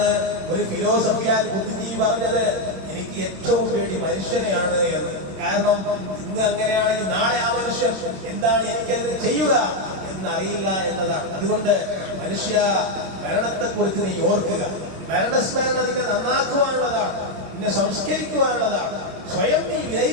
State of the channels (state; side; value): late; left; 27 ms